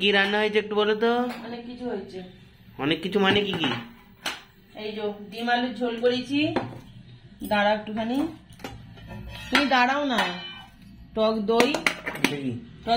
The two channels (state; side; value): identical; both; correlation 1.00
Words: কি রান্না হয়েছে একটু বলো তো? অনেক কিছু হয়েছে। অনেক কিছু মানে কি কি? এই যে ডিম আলুর ঝোল করেছি। দাঁড়া একটুখানি, তুমি দাঁড়াও না। টক দই,